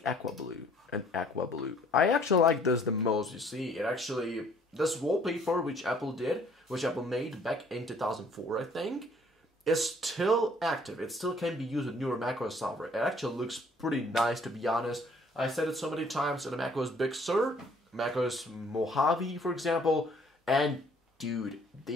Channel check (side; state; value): both; normal; correlation 0.59